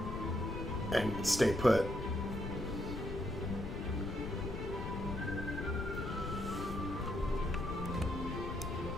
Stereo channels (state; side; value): noise; left; rumble, 5 dB below the sound